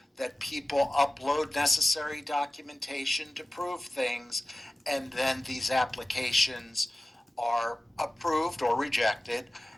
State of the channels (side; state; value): both; normal; correlation 0.96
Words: that people upload necessary documentation to prove things, and then these applications are approved or rejected.